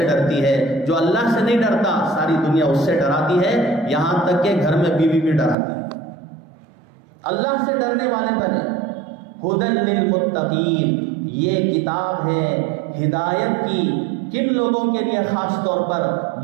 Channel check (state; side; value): drops out; left; at 5.6 s